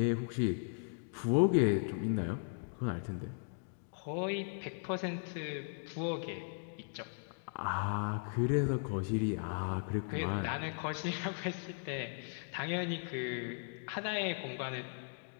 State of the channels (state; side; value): silent; right; digital silence